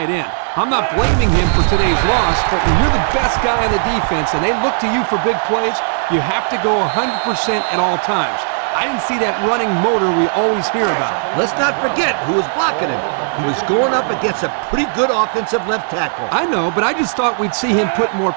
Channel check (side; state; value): left; silent; digital silence